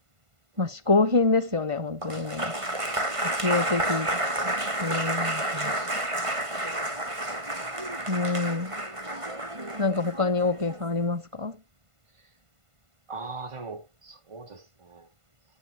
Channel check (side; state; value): left; late; 1.5 ms